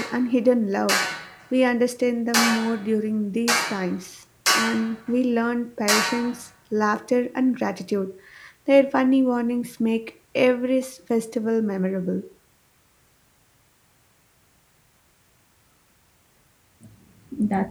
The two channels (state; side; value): identical; both; correlation 1.00